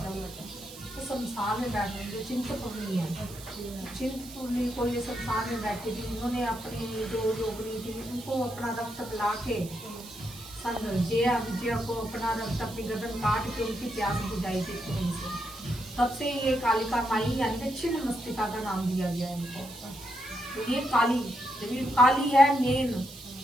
तो शमशान में बैठ रहे जो चिंतपूर्णी है, चिंतपूर्णी को ये शमशान में बैठी थी, इन्होंने अपनी जो योगिनी थी उनको अपना रक्त पिला के जया विजया को अपना रक्त अपनी गर्दन काट के उनकी प्यास बुझाई थी खून से। तब से ये कालिका माई यानी छिन्न मस्तिका का नाम दिया गया है इनको। तो ये काली, जब ये काली है मेन,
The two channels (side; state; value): right; noise; hiss, 16 dB below the sound